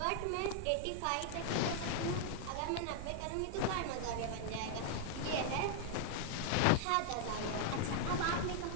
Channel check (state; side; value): different; both; correlation -0.01